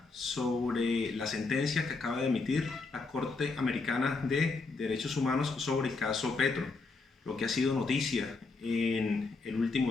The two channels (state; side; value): quieter; right; 4.0 dB